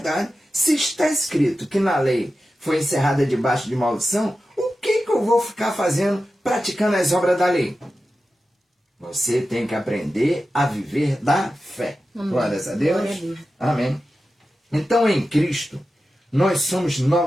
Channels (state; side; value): normal; both; correlation 0.92